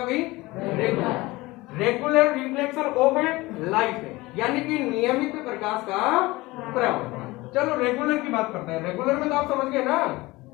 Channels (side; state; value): right; quieter; 20.9 dB